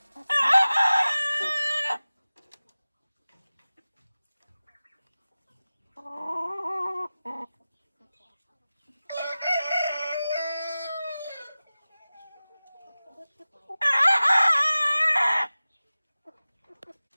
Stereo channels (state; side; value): inverted; both; correlation -0.97